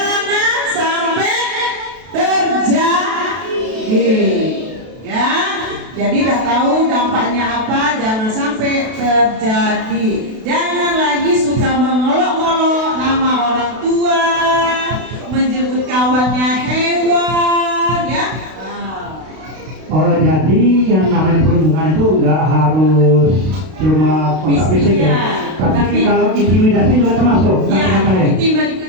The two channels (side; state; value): left; late; 32 ms